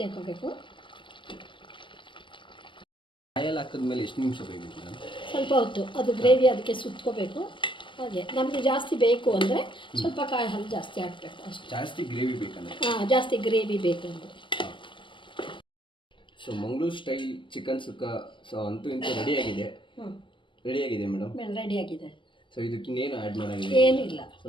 ಹಾಕೋಬೇಕು. ಕಾಯಲ್ಲಿ ಹಾಕಿದ್ಮೇಲೆ ಎಷ್ಟು ನಿಮಿಷ ಬೇಕಬೇಕು ಮೇಡಮ್? ಸ್ವಲ್ಪ ಹೊತ್ತು ಅದು ಗ್ರೇವಿ ಅದಕ್ಕೆ ಸುತ್ಕೋಬೇಕು. ಹಾಗೆ ನಮಗೆ ಜಾಸ್ತಿ ಬೇಕು ಅಂದರೆ ಸ್ವಲ್ಪ ಕಾಯಿ ಹಾಲು ಜಾಸ್ತಿ ಹಾಕಬೇಕು ಅಷ್ಟೇ. ಜಾಸ್ತಿ ಗ್ರೇವಿ ಬೇಕಂದ್ರೆ? ಹಾಂ, ಜಾಸ್ತಿ ಗ್ರೇವಿ ಬೇಕು ಅಂದರೆ. ಸೊ ಮಂಗಳೂರು ಸ್ಟೈಲ್ ಚಿಕನ್ ಸುಕ್ಕ ಸೊ ಅಂತೂ ಇಂತೂ ರೆಡಿಯಾಗಿದೆ. ರೆಡಿಯಾಗಿದೆ ಮೇಡಮ್. ರೆಡಿಯಾಗಿದೆ. ಸೊ ಇದಕ್ಕೆ ಇನ್ನೇನು ಆ್ಯಡ್ ಮಾಡೋಂಗಿಲ್ಲ? ಏನಿಲ್ಲ, ಸೊ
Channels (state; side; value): late; right; 0.24 ms